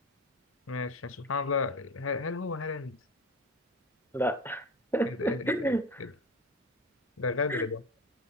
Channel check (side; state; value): both; normal; correlation 0.27